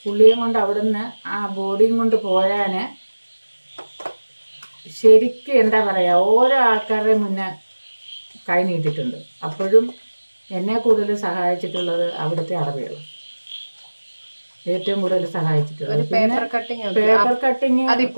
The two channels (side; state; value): both; inverted; correlation -1.00